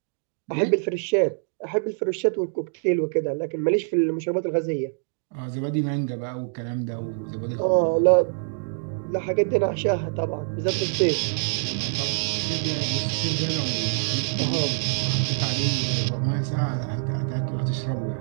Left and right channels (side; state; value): left; silent; digital silence